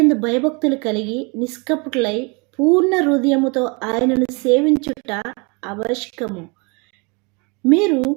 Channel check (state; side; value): quieter; left; 30.5 dB